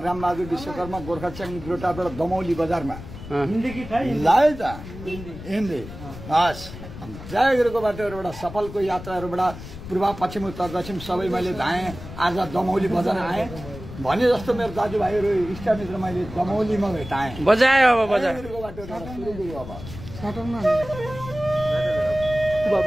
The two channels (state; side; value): noise; left; rumble, 13 dB below the sound